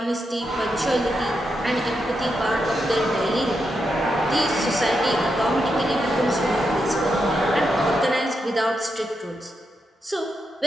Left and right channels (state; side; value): normal; both; correlation 0.84